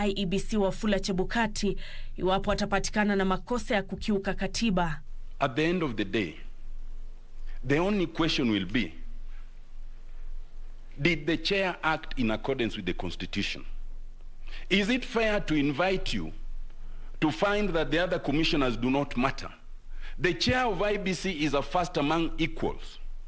IEBC Wafula Chebukati, iwapo atapatikana na makosa ya kukiuka katiba. At the end of the day, the only question will be, did the chair act in accordance with the Constitution? Is it fair to invite you to find that the other commissioners do not matter? The chair of IBC is a first among equals,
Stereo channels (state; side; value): identical; both; correlation 1.00